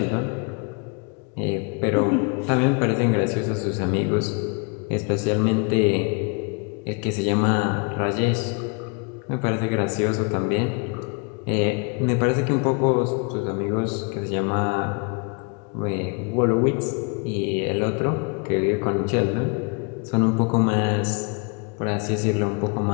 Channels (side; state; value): right; quieter; 33.2 dB